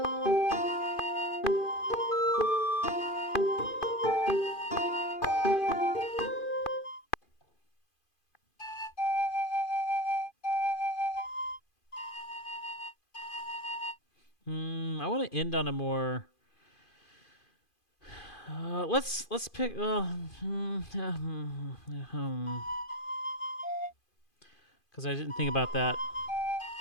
I want to end on a more... let's pick... Because I didn't think about that.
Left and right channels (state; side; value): late; right; 2.5 ms